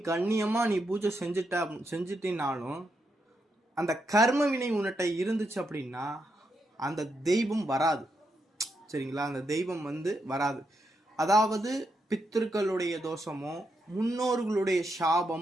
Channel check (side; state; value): both; normal; correlation 0.82